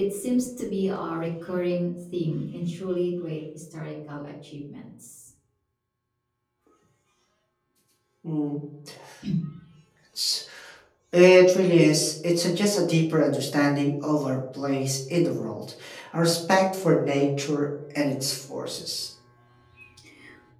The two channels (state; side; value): identical; both; correlation 1.00